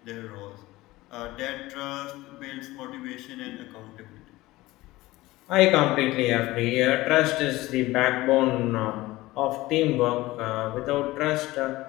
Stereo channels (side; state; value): right; quieter; 18.7 dB